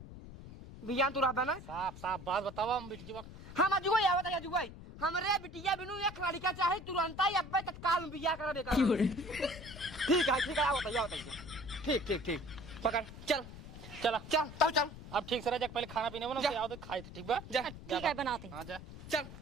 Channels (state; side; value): noise; left; rumble, 14 dB below the sound